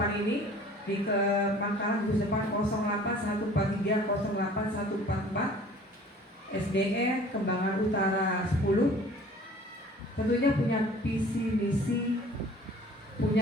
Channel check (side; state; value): both; normal; correlation 0.49